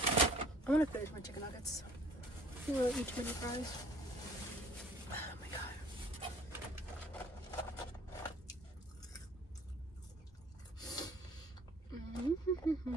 I'm gonna finish my chicken nuggets. I don't really eat too many fries. Oh my god.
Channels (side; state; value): both; normal; correlation 0.54